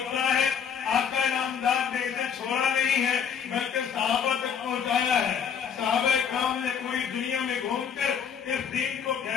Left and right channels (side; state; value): right; quieter; 7.4 dB